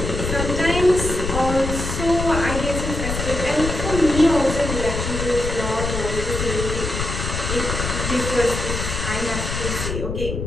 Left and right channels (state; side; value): noise; left; rumble, 3 dB below the sound